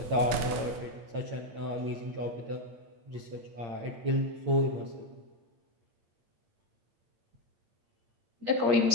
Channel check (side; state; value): left; late; 9.2 ms